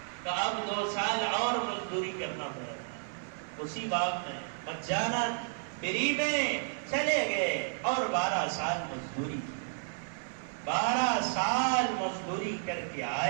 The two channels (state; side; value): silent; left; 56 dB below the other